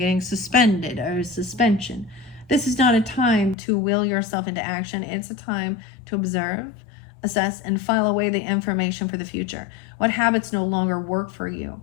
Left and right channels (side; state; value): right; drops out; at 3.6 s